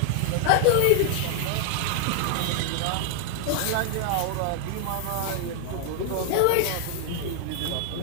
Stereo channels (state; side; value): different; both; correlation 0.00